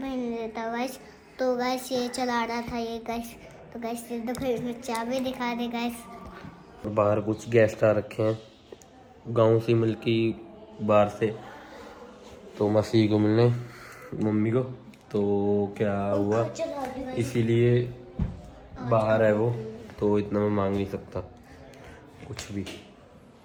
नहीं देता गाइस। तो गाइस ये चला रहा था ये गाइस। तो गाइस ये देखो इसमें चाबी दिखा दे गाइस। बाहर कुछ गेस्ट आ रखे हैं गांव से मिलके बाहर से, तो मसीह को मिलने मम्मी को। तो क्या हुआ इसीलिए बाहर है वो, तो इतना मैं मांग नहीं सकता कुछ भी।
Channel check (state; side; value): identical; both; correlation 1.00